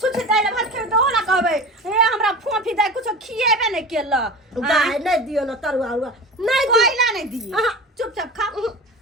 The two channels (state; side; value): normal; both; correlation 0.33